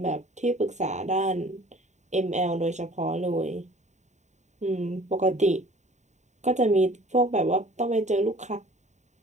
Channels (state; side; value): late; left; 0.34 ms